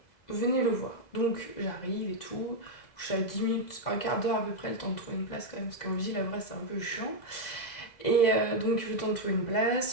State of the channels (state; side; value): late; right; 2.0 ms